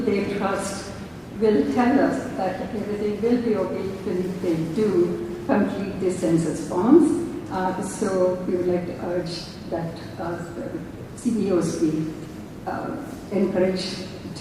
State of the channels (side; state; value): both; identical; correlation 1.00